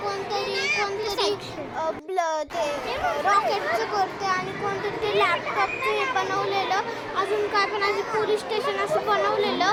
कोणतरी ते रॉकेटचं करते आणि कोणतरी ते लॅपटॉपचं हे बनवलेलं अजून काय पण असं पोलीस स्टेशन असं बनवलेलं.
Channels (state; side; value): identical; both; correlation 1.00